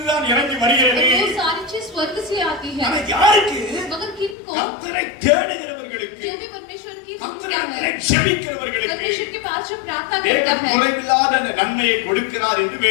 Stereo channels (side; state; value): right; drops out; at 4.4 s